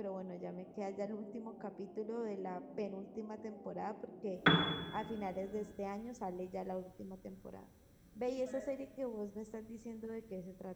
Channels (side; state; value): both; identical; correlation 1.00